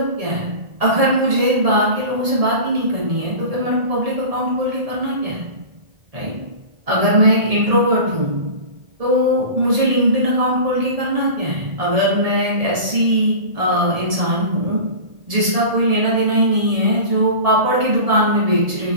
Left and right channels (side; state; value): left; late; 1.7 ms